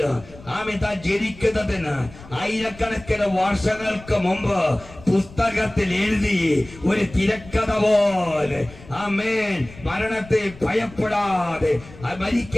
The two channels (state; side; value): noise; left; rumble, 19 dB below the sound